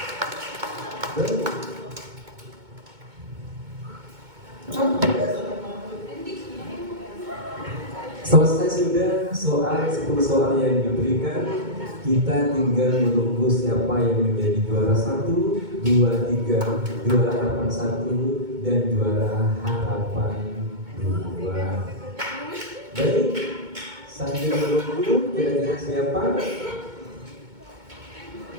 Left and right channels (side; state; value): left; late; 2.2 ms